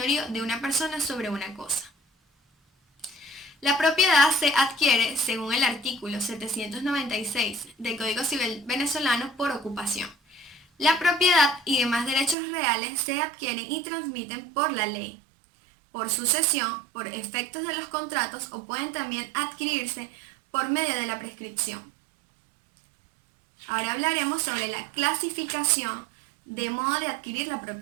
de una persona sobre una cosa. La propiedad se adquiere, según el artículo 796 del Código Civil venezolano, por ocupación. La propiedad y demás derechos reales se adquieren y transmiten por la ley, por sucesión, por efectos de los contratos o pueden también adquirirse por medio de la prescripción. Ahora hablaremos sobre la clasificación de modo de adquirir la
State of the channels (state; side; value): drops out; left; at 12.4 s